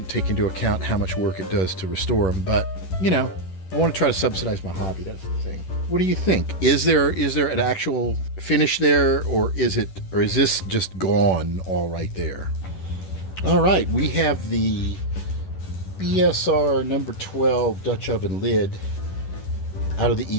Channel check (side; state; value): right; late; 11 ms